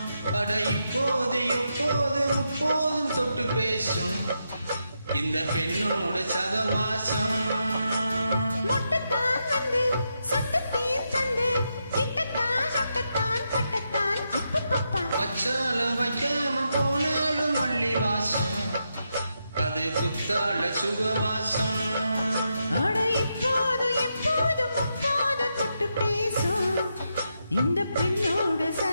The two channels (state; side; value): inverted; both; correlation -0.84